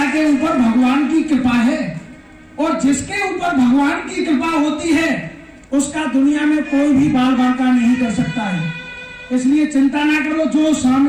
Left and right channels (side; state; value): both; identical; correlation 1.00